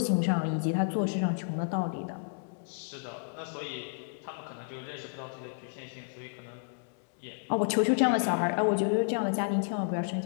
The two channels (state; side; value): silent; right; digital silence